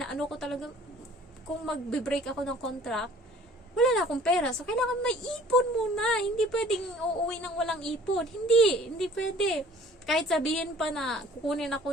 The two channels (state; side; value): normal; both; correlation 0.52